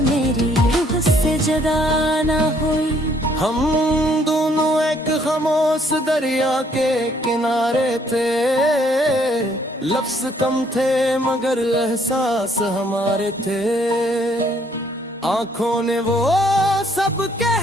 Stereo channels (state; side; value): normal; both; correlation 0.65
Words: मेरी रूह से जुदा ना हुई। हम दोनों एक खामोश दरिया के किनारे थे, लफ्ज कम थे मगर एहसास हमारे थे। आंखों ने वो सब